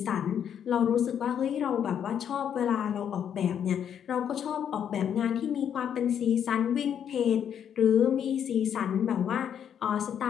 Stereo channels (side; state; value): right; quieter; 8.8 dB